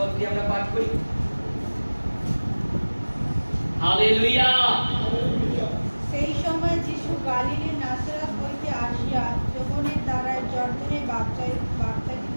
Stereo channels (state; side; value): inverted; both; correlation -1.00